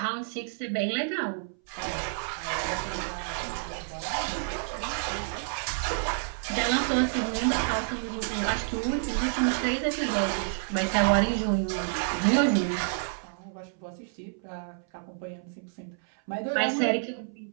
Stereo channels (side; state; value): left; silent; 58 dB below the other